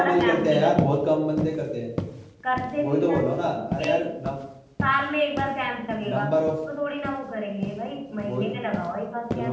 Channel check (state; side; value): identical; both; correlation 1.00